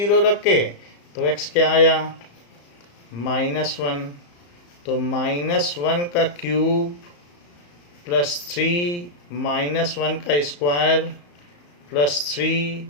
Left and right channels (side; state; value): right; late; 34 ms